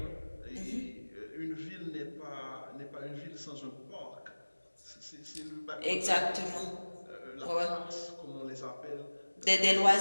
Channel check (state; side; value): inverted; both; correlation -1.00